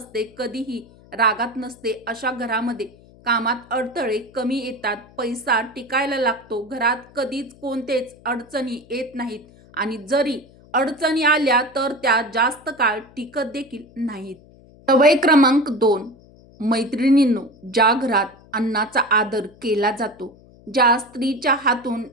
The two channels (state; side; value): noise; left; hum, 25 dB below the sound